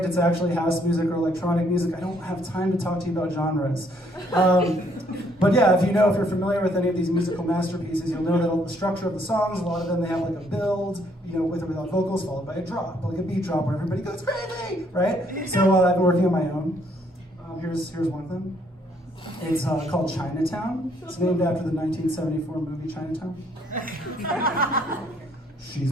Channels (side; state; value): both; normal; correlation 0.67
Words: it's actually house music or electronic music. I don't have time to talk to you about genres. But yeah, if you're familiar with any of these musical masterpieces, you'll know that the structure of the songs, a lot of them, they have like a build, with or without vocals, followed by a drop, like a beat drop where everybody goes crazy, right? So I've been working on my own. Here's one of them. It's called Chinatown. It's named after the 1974 movie Chinatown. She's